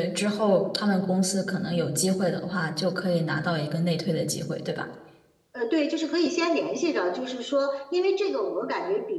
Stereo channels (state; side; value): identical; both; correlation 1.00